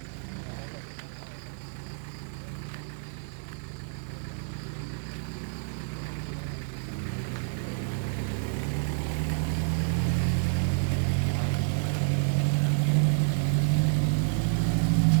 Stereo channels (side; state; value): left; silent; 59 dB below the other